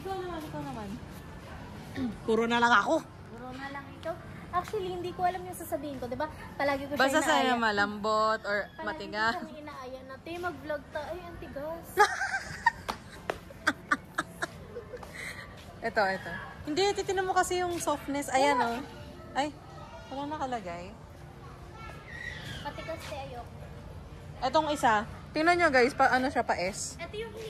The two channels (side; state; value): both; identical; correlation 1.00